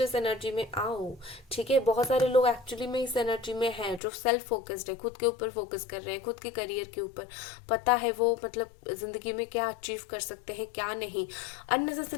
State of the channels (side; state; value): right; drops out; at 4.0 s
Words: एनर्जी में आओ, ठीक है। बहुत सारे लोग एक्चुअली में इस एनर्जी में हैं जो सेल्फ फोकस्ड है, खुद के ऊपर फोकस कर रहे हैं, खुद के करियर के ऊपर, पता है वो मतलब जिंदगी में क्या अचीव कर सकते हैं क्या नहीं।